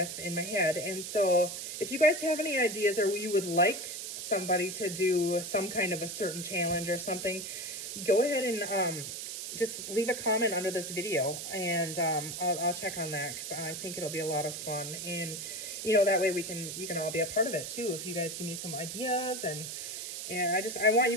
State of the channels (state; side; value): noise; right; hiss, 6 dB below the sound